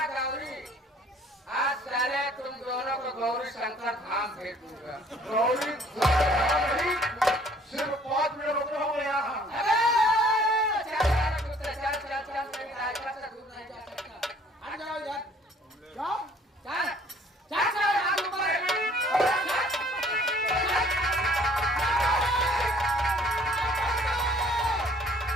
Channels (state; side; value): normal; both; correlation 0.57